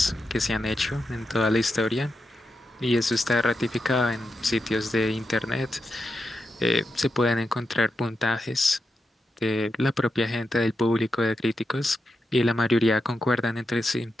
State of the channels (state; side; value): normal; both; correlation 0.87